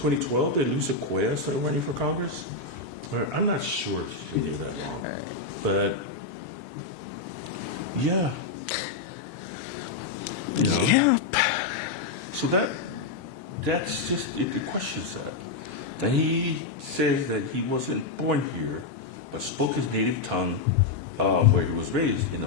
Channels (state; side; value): quieter; right; 3.9 dB